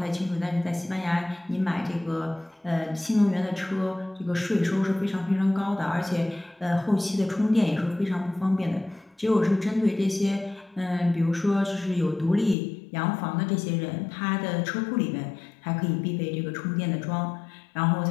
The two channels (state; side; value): drops out; right; at 12.6 s